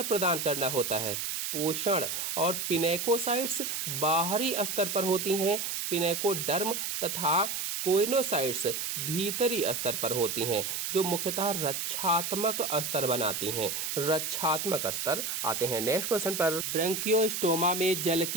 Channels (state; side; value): noise; right; hiss, 2 dB below the sound